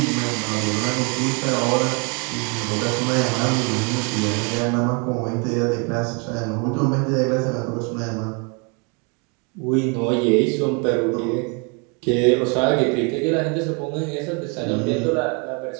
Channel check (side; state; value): left; quieter; 33.9 dB